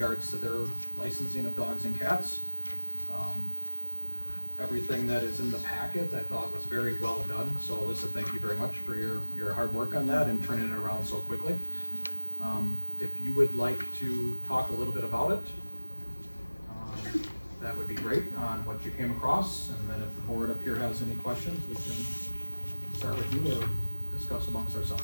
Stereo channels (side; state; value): both; inverted; correlation -1.00